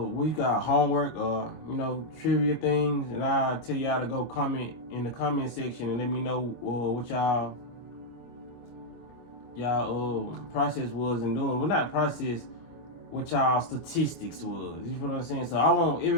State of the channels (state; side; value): late; right; 25 ms